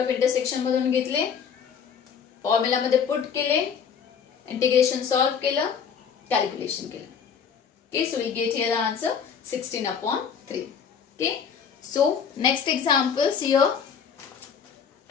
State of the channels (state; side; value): quieter; right; 7.0 dB